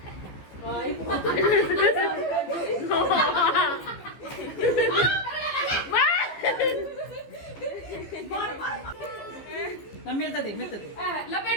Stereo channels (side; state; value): right; late; 15 ms